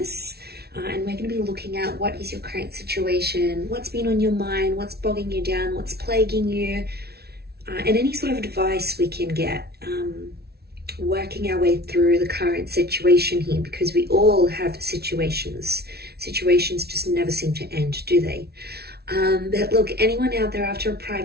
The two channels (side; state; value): left; late; 0.46 ms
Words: And we're going to be looking at what is your current situation, what's been on your mind, what's bogging you down, what's plaguing you, and any sort of advice we can get, working our way through the current situation here, because we all have situations. Situations just never seem to end, do they? But look, anyone out there after a